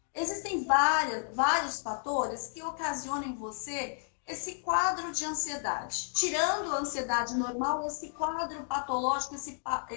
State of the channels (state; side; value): silent; right; 56 dB below the other